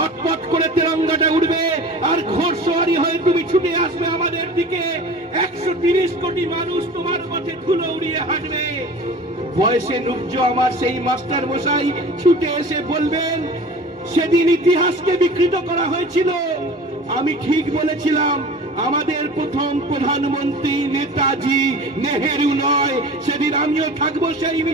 করে তেরঙ্গাটা উঠবে আর ঘোড়সওয়ারি হয়ে তুমি ছুটে আসবে আমাদের দিকে। 130 কোটি মানুষ তোমার পথে ধুলো উড়িয়ে হাঁটবে। বয়সে নুব্জ আমার সেই মাস্টার মশাই ছুটে এসে বলবেন, সেদিন ইতিহাসকে বিকৃত করা হয়েছিল, আমি ঠিক বলেছিলাম। আমাদের প্রথম প্রধানমন্ত্রী নেতাজি, নেহেরু নয়। সেদিন আমিও থাকবো সেই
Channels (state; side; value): normal; both; correlation 0.39